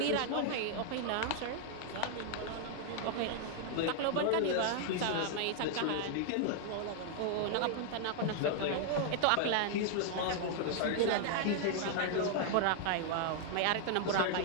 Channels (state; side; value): different; both; correlation 0.00